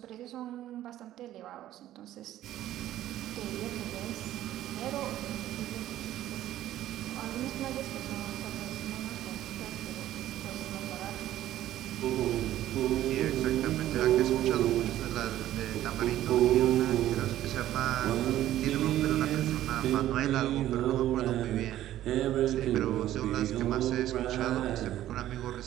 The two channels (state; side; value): quieter; left; 13.3 dB